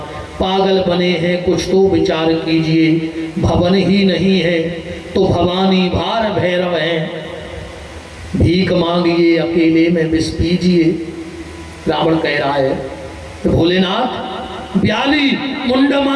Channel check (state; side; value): identical; both; correlation 1.00